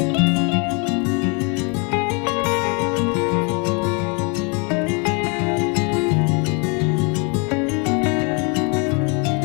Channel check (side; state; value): right; quieter; 33.8 dB